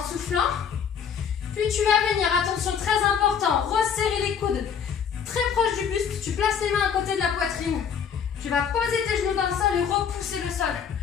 soufflant. Puis tu vas venir, attention, très important, resserrer les coudes très proche du buste. Tu places les mains à côté de la poitrine. Tu vas poser tes genoux dans le sol et repousser le sol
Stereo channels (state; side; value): quieter; right; 7.4 dB